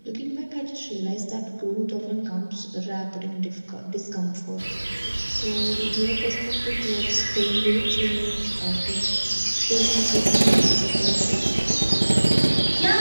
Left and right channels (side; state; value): both; inverted; correlation -1.00